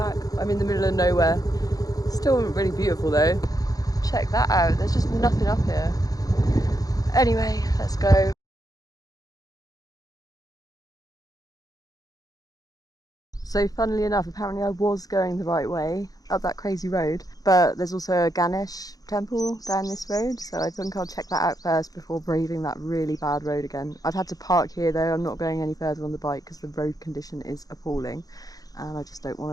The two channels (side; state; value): right; late; 0.18 ms